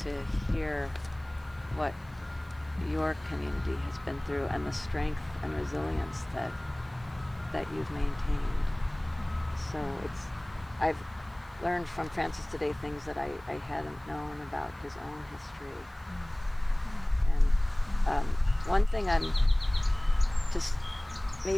hear what your community has been through and the strength and resilience that you've maintained. So I've learned from Francis today things that I hadn't known about his own history. And one thing I'm just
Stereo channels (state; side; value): noise; right; hiss, 30 dB below the sound